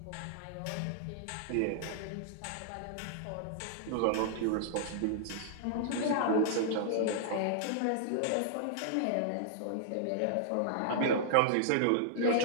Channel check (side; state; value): both; different; correlation -0.01